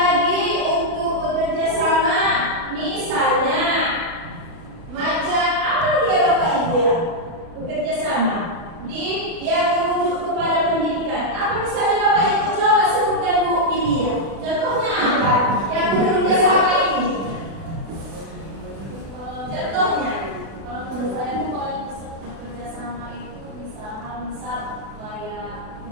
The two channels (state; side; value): late; left; 36 ms